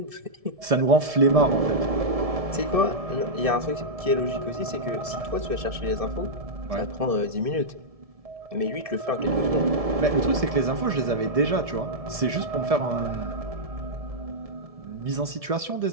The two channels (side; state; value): left; late; 1.7 ms